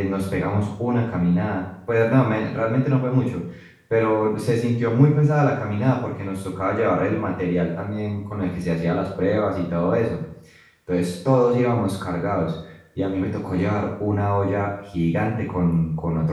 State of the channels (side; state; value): both; identical; correlation 1.00